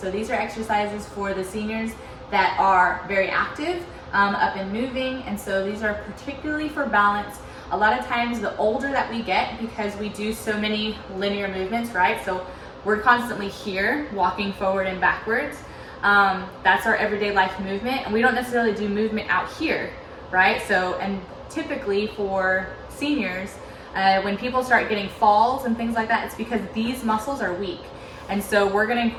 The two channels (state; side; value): identical; both; correlation 1.00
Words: these are exercises for the seniors that are very active, up and moving. And so these are particularly for balance. A lot of times the older that we get, because we do so many linear movements, right? So we're constantly here, walking forward and backwards. That's our everyday life movement. And we don't necessarily do movement out here, right? So, and typically for seniors, when people start getting falls and things like that, it's because these muscles are weak. And so we're going to